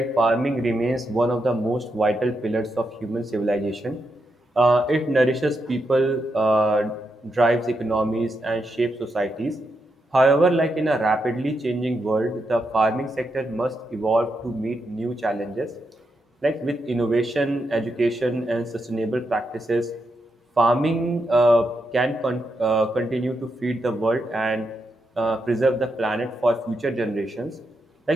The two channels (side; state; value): both; normal; correlation 0.83